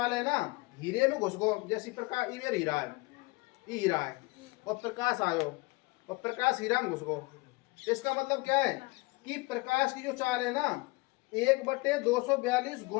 है ना, हीरे में घुस गो, जैसे प्रकाश इधर हीरा है, ये हीरा है, और प्रकाश आयो, और प्रकाश हीरा में घुस गो। इसका मतलब क्या है कि प्रकाश की जो चाल है ना, 1/242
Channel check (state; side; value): quieter; right; 24.8 dB